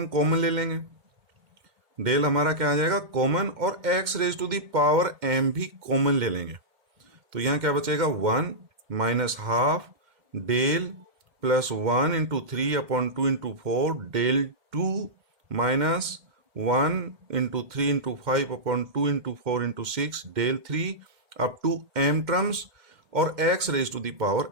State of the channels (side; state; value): left; late; 2.1 ms